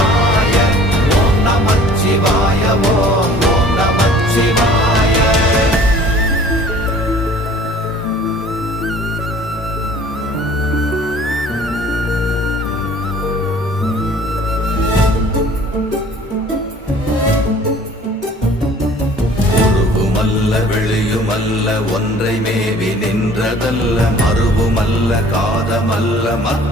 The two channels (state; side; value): normal; both; correlation 0.50